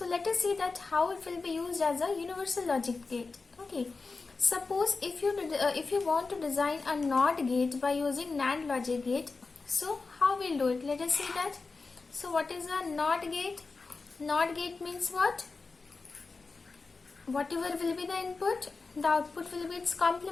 let us see that how it will be used as a universal logic gate. Okay, suppose if you want to design a NOT gate by using NAND logic gate, so how we'll do it? Let us see that. So what is a NOT gate? NOT gate means what? Whatever will be the input, the output will be its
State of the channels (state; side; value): quieter; right; 4.1 dB